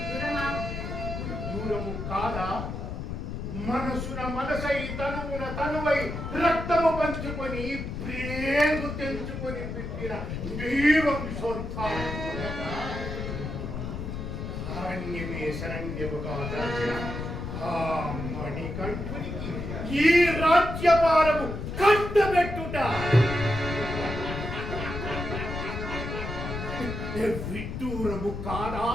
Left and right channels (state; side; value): noise; left; rumble, 5 dB below the sound